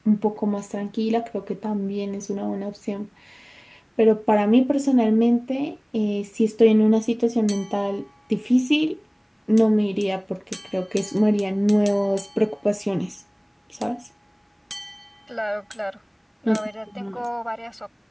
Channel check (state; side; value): identical; both; correlation 1.00